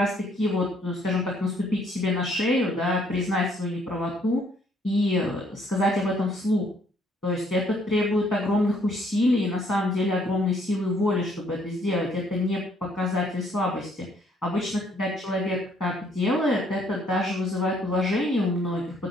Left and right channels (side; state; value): both; normal; correlation 0.66